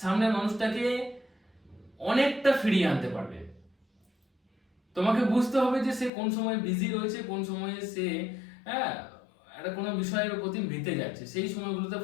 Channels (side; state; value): right; drops out; at 6.1 s